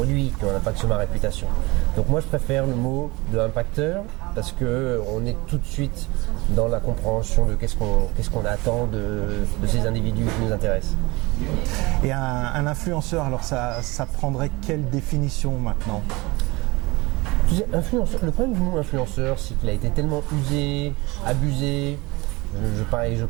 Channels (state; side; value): quieter; left; 23.4 dB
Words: qui ont un impact sur ma réputation. Donc moi je préfère le mot de impacteur parce qu'on est tout de suite dans la compréhension de qu'est-ce qu'on attend de ces individus qui nous intéressent. Et un influenceur, alors ça prendrait quelle définition maintenant ? Le problème du mot influenceur, c'est qu'il a été tellement usé, abusé. Je